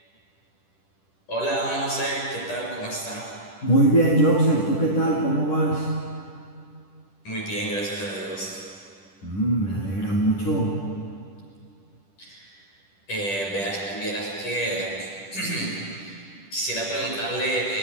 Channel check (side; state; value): right; late; 10 ms